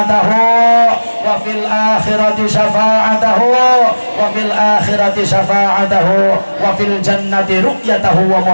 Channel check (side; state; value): both; inverted; correlation -1.00